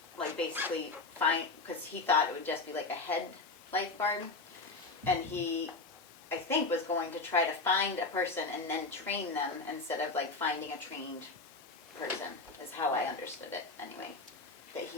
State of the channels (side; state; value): right; quieter; 3.7 dB